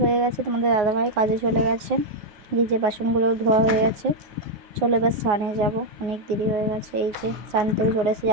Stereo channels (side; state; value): left; late; 9.6 ms